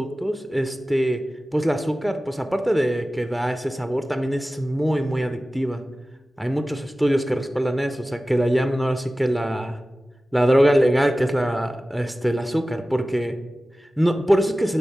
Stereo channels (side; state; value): both; normal; correlation 0.96